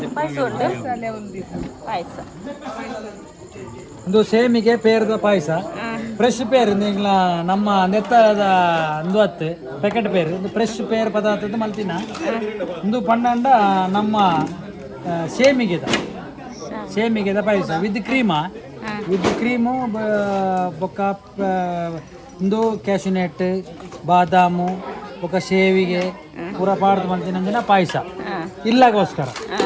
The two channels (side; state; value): both; identical; correlation 1.00